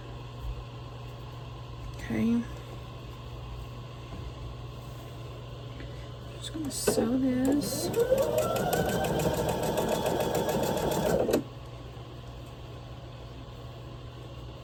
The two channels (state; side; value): identical; both; correlation 1.00